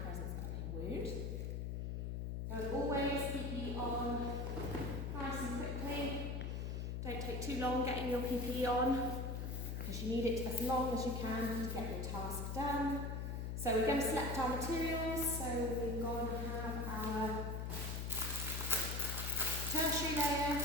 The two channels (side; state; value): left; noise; hum, 3 dB below the sound